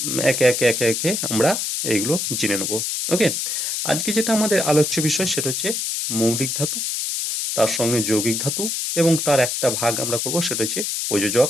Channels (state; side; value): noise; left; hiss, 1 dB below the sound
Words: একে একে একে একে আমরা এইগুলো জেনে নেব। ওকে, আজকে যেটা আমাদের আলোচ্য বিষয় সেটা হচ্ছে মৌলিক ধাতু, তার সঙ্গে যৌগিক ধাতু, এবং তার একটা ভাগ আমরা করব সেটা হচ্ছে প্রযোজক